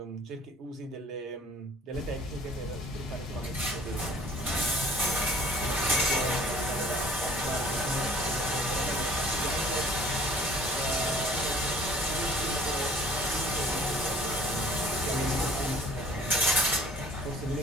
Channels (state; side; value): normal; both; correlation 0.50